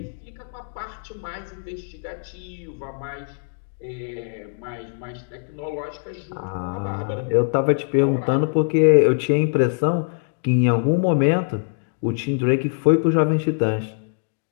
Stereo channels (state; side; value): silent; right; digital silence